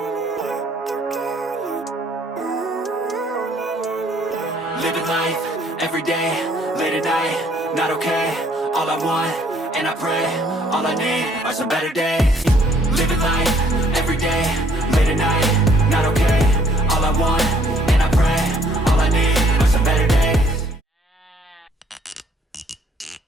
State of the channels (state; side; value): normal; both; correlation 0.63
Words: Living life, every day, late at night, not okay. All I want, and I pray, all I need are some better days. Living life, every day, late at night, not okay. All I want, and I pray, all I need are some better days.